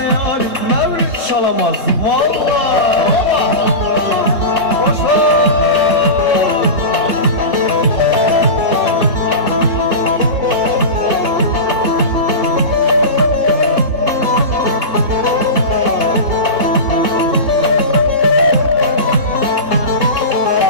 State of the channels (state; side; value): late; left; 3.7 ms